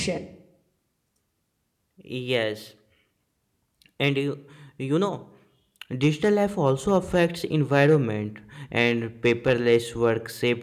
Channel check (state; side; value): identical; both; correlation 1.00